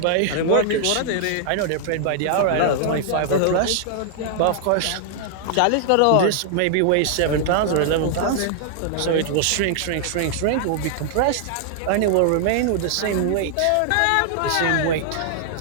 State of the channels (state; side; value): different; both; correlation -0.01